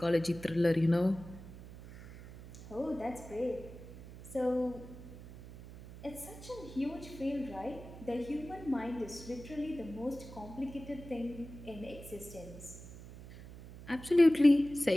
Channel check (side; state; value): right; noise; hum, 15 dB below the sound